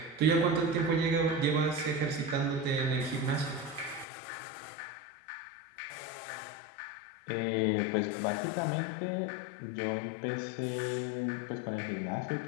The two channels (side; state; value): right; drops out; at 4.0 s